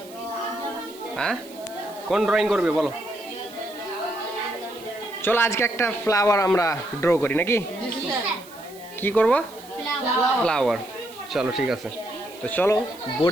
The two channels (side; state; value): right; noise; hiss, 21 dB below the sound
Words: হ্যাঁ, কোন ড্রয়িং করবে বলো? চলো আজকে একটা ফ্লাওয়ার আমরা ড্র করি নাকি? কি করব? ফ্লাওয়ার। চলো ঠিক আছে, তো চলো